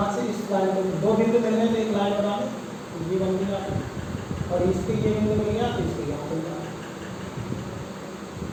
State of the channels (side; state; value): both; identical; correlation 1.00